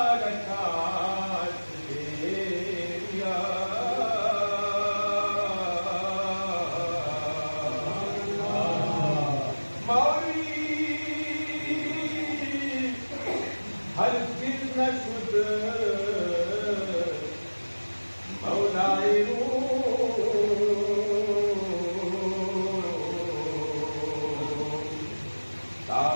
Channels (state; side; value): inverted; both; correlation -1.00